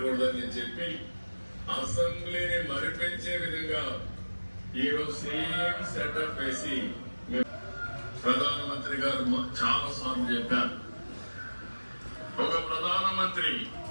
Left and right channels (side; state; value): both; inverted; correlation -1.00